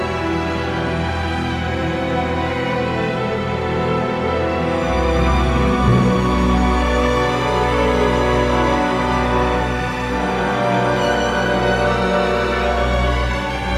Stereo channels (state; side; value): identical; both; correlation 1.00